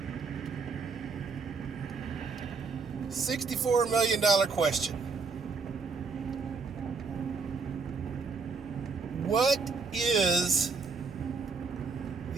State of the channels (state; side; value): quieter; left; 4.8 dB